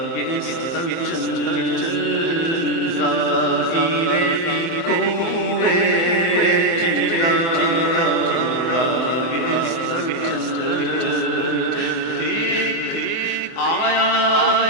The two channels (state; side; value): late; right; 24 ms